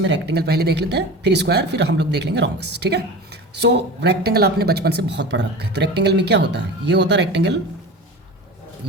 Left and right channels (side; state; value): both; normal; correlation 0.33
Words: रेक्टेंगल पहले देख लेते हैं, फिर स्क्वायर, फिर हम लोग देख लेंगे रोम्बस, ठीक है। सो रेक्टेंगल आपने बचपन से बहुत पढ़ रखा है। तो रेक्टेंगल में क्या होता है, ये होता है रेक्टेंगल,